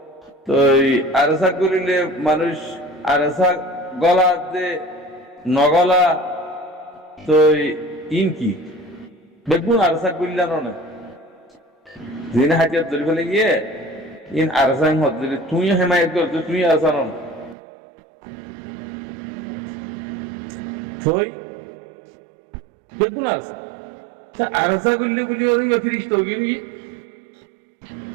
তো আরসা করিলে মানুষ আরসা গলা দে নগলা তো ইন কি বেগুন আরসা করলে না দিন হাতিয়ার ধরে ফেলে গিয়ে ইন আরসাং হত যদি তুই হেমায়ত করতো তুই আরসা নন থই বেগুন আরসা তা আরসা করলে বলি ওর ফিরিস্ত গিয়ে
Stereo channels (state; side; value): drops out; left; at 17.6 s